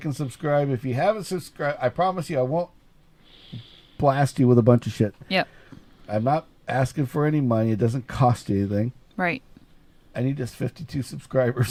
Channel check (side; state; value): both; identical; correlation 1.00